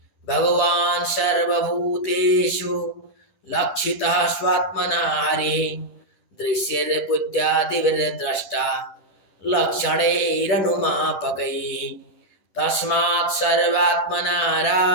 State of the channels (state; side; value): late; right; 10 ms